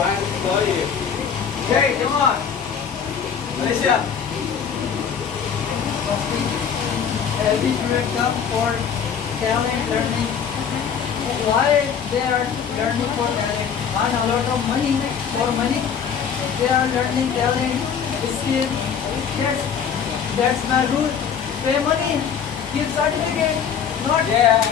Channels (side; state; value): right; quieter; 7.3 dB